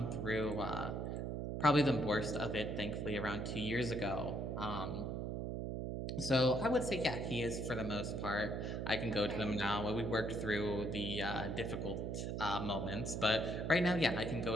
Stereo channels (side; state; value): right; noise; hum, 3 dB below the sound